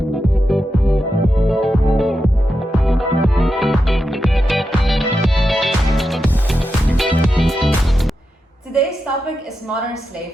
Today's topic is modern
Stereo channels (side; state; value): both; normal; correlation 0.88